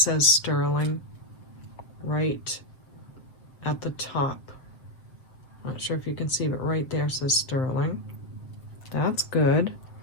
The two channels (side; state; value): right; late; 7.5 ms